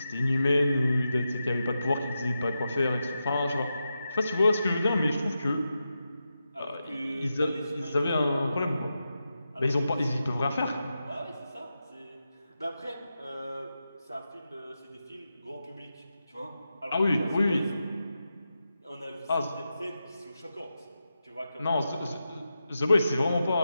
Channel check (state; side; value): inverted; both; correlation -0.89